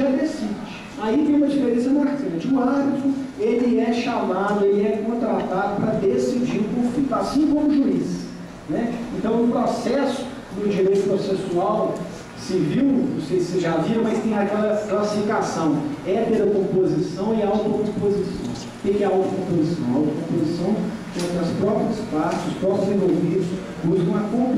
decide. Aí tem uma diferença marcante. O árbitro, ele é chamado, ele é contratado para decidir o conflito, assim como o juiz. Né? Então, no processo do direito processual civil, não sei se vocês já viram, mas tem aquela classificação, heterocomposição e autocomposição. O que é a autocomposição? A autocomposição é as próprias partes, os próprios envolvidos buscam a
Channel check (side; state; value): both; identical; correlation 1.00